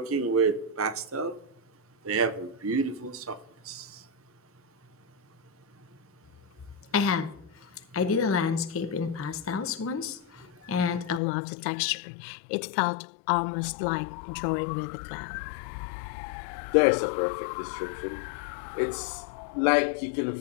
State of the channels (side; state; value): right; drops out; at 11.2 s